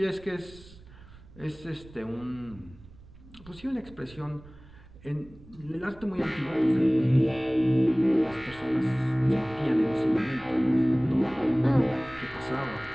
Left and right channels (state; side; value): noise; right; rumble, 21 dB below the sound